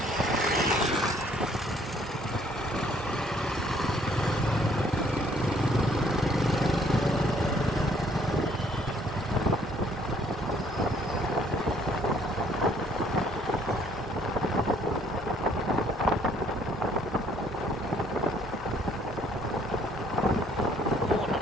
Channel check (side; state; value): both; normal; correlation 0.63